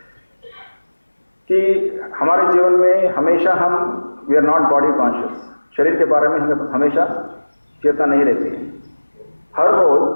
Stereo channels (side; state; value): both; inverted; correlation -1.00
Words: कि हमारे जीवन में हमेशा हम we are not body conscious. शरीर के बारे में हमें हमेशा चेतना नहीं रहती है. हर